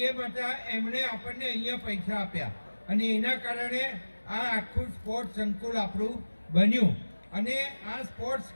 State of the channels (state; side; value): inverted; both; correlation -1.00